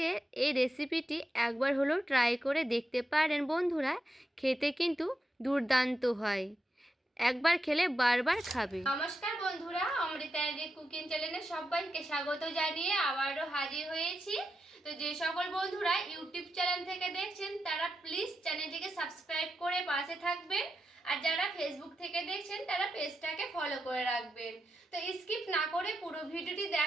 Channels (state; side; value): normal; both; correlation 0.87